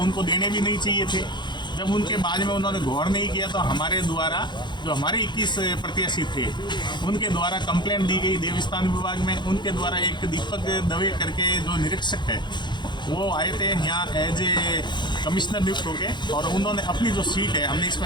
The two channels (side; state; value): right; late; 0.22 ms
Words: देने भी नहीं चाहिए थे। जब उनके बाद में उन्होंने गौर नहीं किया तो हमारे द्वारा जो हमारे 21 प्रत्याशी थे उनके द्वारा कंप्लेंट दी गई देवस्थान विभाग में। उनके द्वारा एक दीपक दवे करके जो निरीक्षक है वो आए थे यहाँ एज ए कमिश्नर नियुक्त होके और उन्होंने अपनी जो सीट है हमने